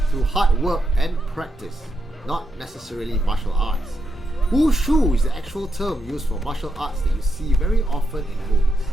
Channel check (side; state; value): both; normal; correlation 0.83